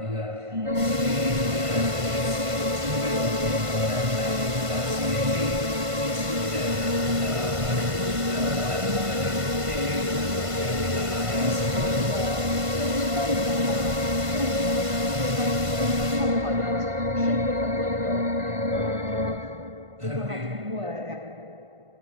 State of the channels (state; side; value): late; left; 1.5 ms